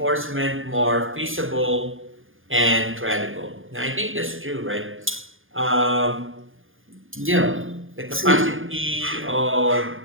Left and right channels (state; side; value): late; left; 0.59 ms